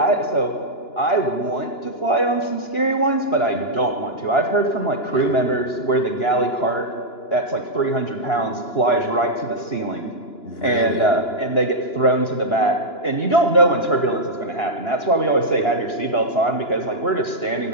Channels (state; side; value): late; right; 2.9 ms